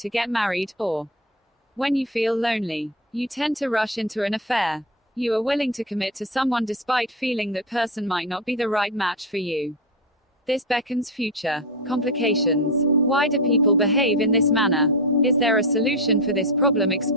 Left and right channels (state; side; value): normal; both; correlation 0.16